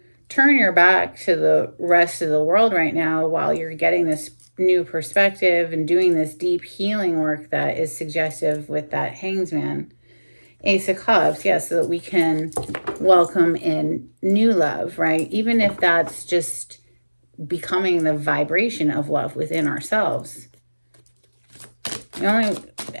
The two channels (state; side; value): inverted; both; correlation -1.00